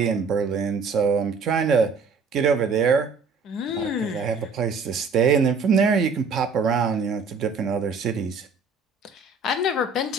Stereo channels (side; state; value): left; quieter; 4.5 dB